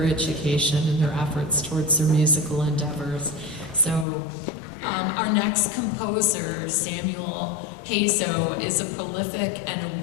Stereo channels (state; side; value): drops out; right; at 4.0 s